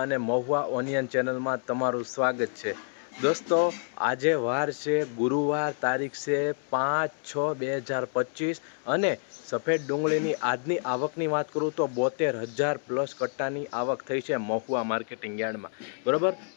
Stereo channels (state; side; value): silent; right; 57 dB below the other